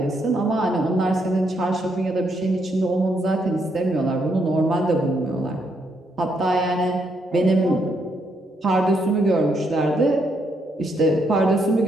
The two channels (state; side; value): normal; both; correlation 0.76